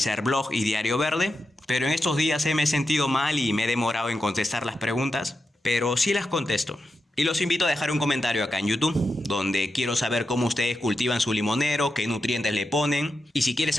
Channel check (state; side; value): normal; both; correlation 0.88